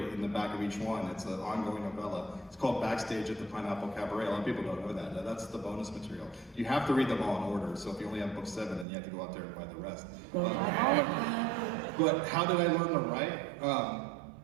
in the back of each one. It's an ongoing novella. It's called Backstage at the Pineapple Cabaret. A lot of people don't know that. That's the bonus material. You have to read them all in order. So if you only have book 7, then you have to go out there and buy the rest. But how did I learn to write?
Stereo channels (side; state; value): left; drops out; at 8.8 s